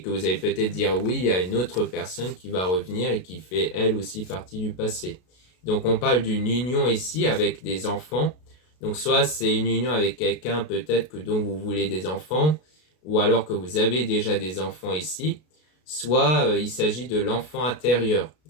que vous allez peut-être dire oui à une autre personne qui va revenir et qui fait elle aussi partie du passé. Donc on parle d'une union ici avec des enfants. Donc soit c'est une union avec quelqu'un peut-être que dont vous voulez des enfants, ou alors que vous avez déjà des enfants ici, soit il s'agit de l'enfant intérieur.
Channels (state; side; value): late; right; 33 ms